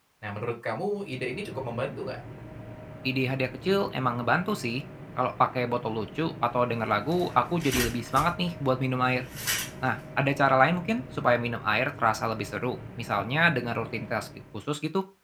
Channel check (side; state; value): both; identical; correlation 1.00